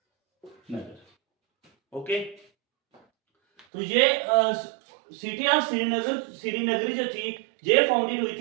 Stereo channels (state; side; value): drops out; left; at 3.7 s